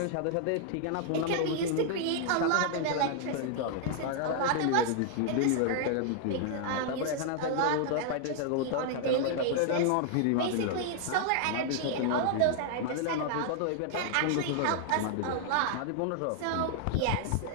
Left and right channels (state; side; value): different; both; correlation -0.01